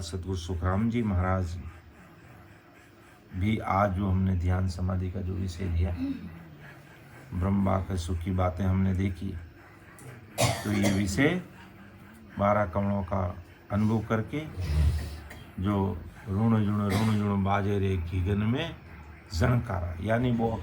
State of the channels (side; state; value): both; identical; correlation 1.00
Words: सतगुरु सुखराम जी महाराज भी आज जो हमने ध्यान समाधि का जो विषय लिया, ब्रह्मा के सुख की बातें हमने देखी, तो ये विषय 12 कमलों का अनुभव करके जो ऋण जुण बाजे रे गगन में झनकारा, यानी वो